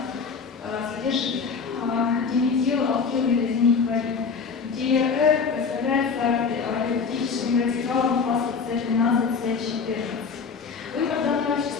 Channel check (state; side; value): quieter; right; 5.4 dB